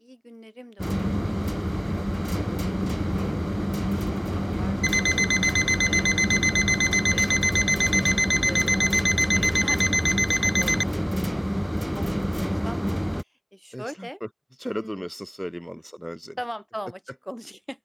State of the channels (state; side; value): identical; both; correlation 1.00